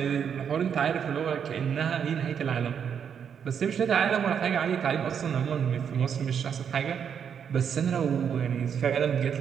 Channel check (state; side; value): quieter; left; 7.7 dB